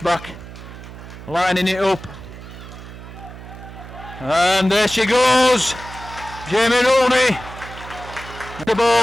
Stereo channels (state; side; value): noise; right; hum, 14 dB below the sound